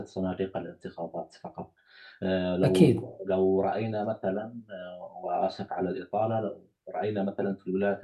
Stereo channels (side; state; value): both; identical; correlation 1.00